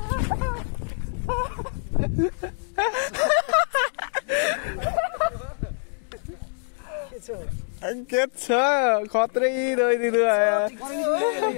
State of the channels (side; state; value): right; silent; digital silence